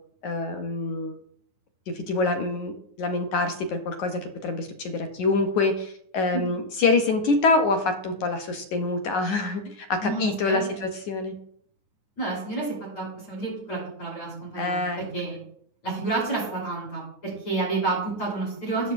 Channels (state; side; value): late; right; 9.5 ms